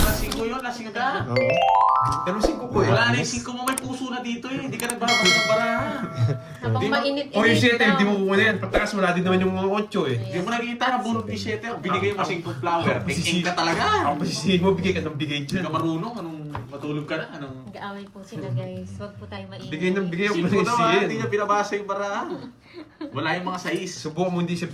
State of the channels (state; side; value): identical; both; correlation 1.00